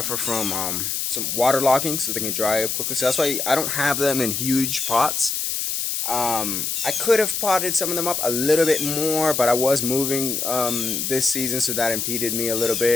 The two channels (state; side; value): noise; left; hiss, 1 dB below the sound